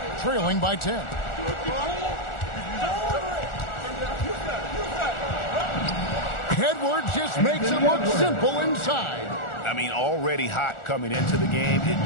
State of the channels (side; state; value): right; late; 1.4 ms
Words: trailing by 10. Edwards just makes it look simple inside. I mean, already hot coming into the game.